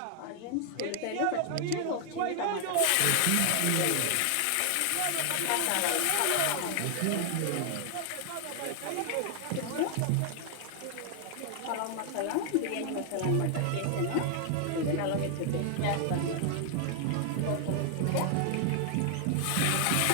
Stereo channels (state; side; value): different; both; correlation 0.00